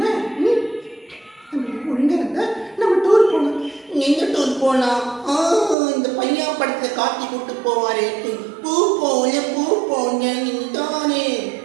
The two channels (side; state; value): left; drops out; at 5.8 s